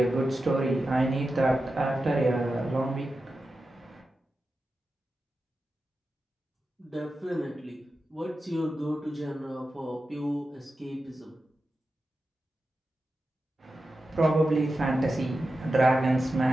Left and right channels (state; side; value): normal; both; correlation 0.92